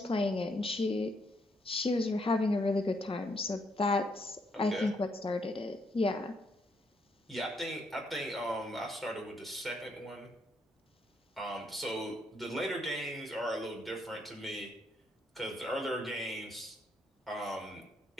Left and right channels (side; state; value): both; normal; correlation 0.74